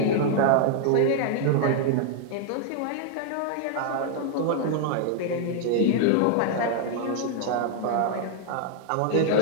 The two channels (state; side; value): different; both; correlation 0.00